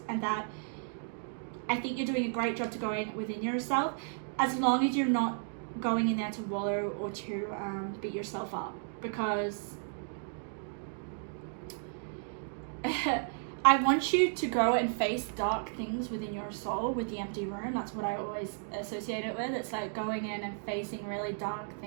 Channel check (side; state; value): left; silent; digital silence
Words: and that I think you're doing a great job to go in within yourself, as long as you're not going in there to wallow or to beat yourself up. Because I want you to go and face dark things within your soul with the empty room. That's what I always associate it with. It's like going in and facing really dark